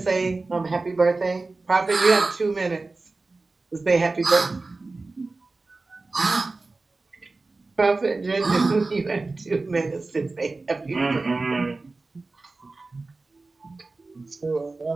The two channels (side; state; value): left; quieter; 3.5 dB